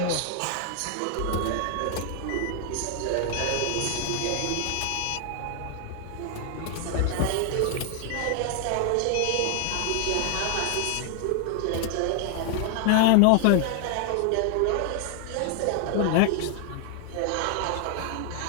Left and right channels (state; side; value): different; both; correlation 0.00